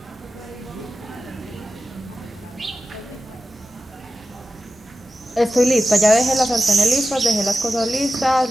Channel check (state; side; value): normal; both; correlation 0.92